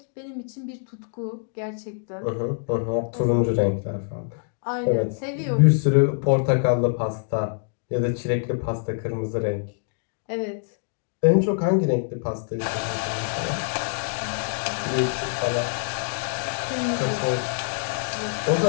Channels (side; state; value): right; silent; digital silence